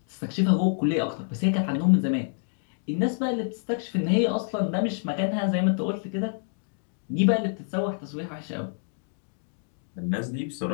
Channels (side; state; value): right; silent; digital silence